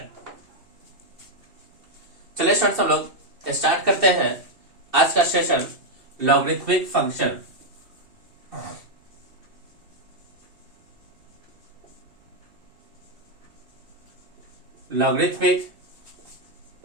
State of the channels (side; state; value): left; late; 2.7 ms